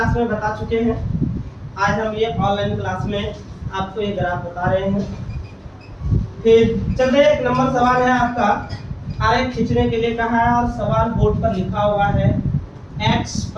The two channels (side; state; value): both; identical; correlation 1.00